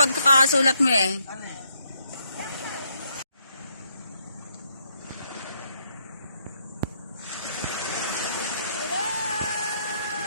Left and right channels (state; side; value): inverted; both; correlation -0.74